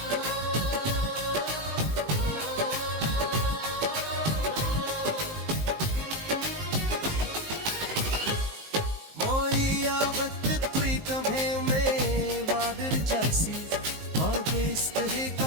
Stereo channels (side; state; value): left; late; 19 ms